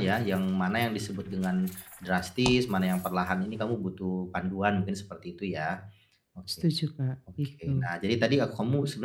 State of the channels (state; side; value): identical; both; correlation 1.00